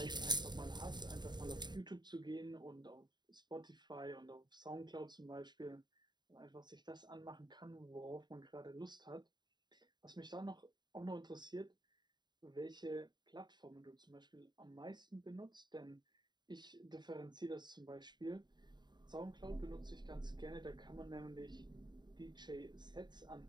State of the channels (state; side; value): late; left; 0.21 ms